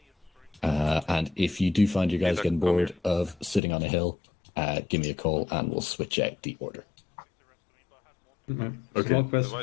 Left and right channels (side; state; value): right; drops out; at 3.6 s